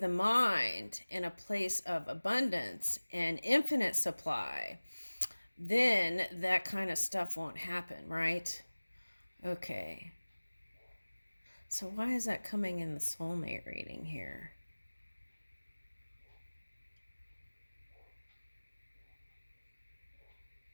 mind in a place of abundance and infinite supply, then that kind of stuff won't happen, right? Okay. So why is that coming in the soulmate reading here?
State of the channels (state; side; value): inverted; both; correlation -1.00